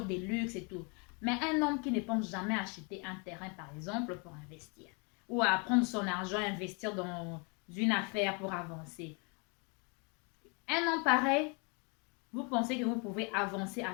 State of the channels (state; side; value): quieter; right; 33.7 dB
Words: luxe et tout. Mais un homme qui ne pense jamais acheter un terrain, par exemple, pour investir. Ou à prendre son argent et investir dans une affaire pour avancer. Un homme pareil, vous pensez que vous pouvez avancer